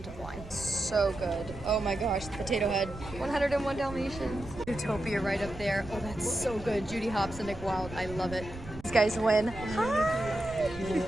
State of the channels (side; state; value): right; noise; rumble, 14 dB below the sound